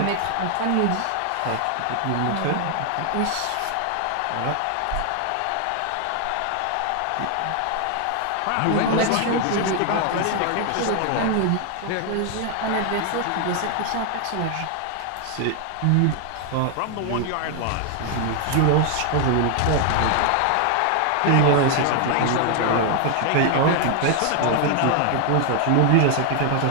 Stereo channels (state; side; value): different; both; correlation 0.00